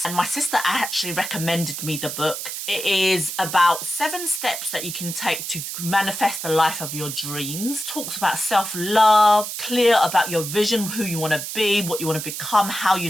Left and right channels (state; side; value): noise; right; hiss, 6 dB below the sound